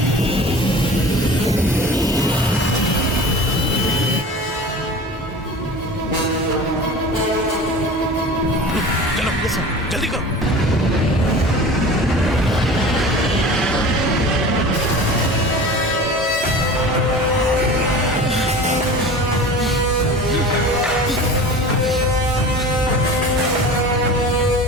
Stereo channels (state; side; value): normal; both; correlation 0.37